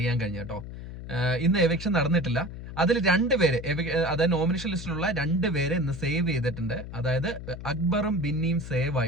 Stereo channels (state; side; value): noise; left; hum, 10 dB below the sound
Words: കഴിഞ്ഞത് കേട്ടോ. ഇന്ന് എവിക്ഷൻ നടന്നിട്ടില്ല. അതിൽ രണ്ടുപേര്, അതായത് നോമിനേഷൻ ലിസ്റ്റിലുള്ള രണ്ടുപേരെ ഇന്ന് സേവ് ചെയ്തിട്ടുണ്ട്. അതായത് അക്ബറും ബിന്നിയും സേവ്